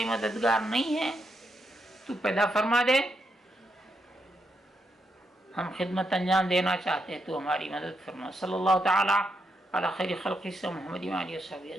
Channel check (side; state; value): both; normal; correlation 0.82